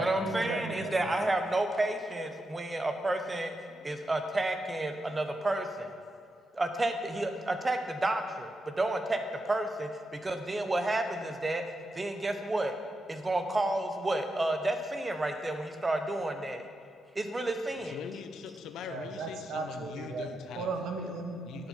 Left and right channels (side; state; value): both; normal; correlation 0.86